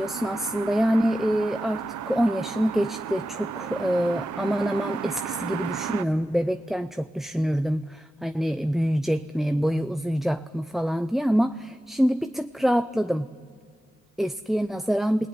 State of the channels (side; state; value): both; normal; correlation 0.93